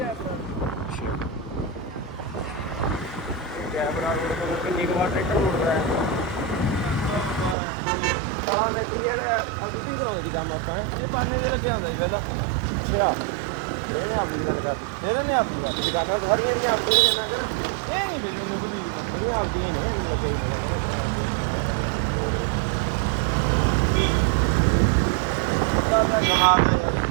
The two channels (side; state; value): left; drops out; at 7.6 s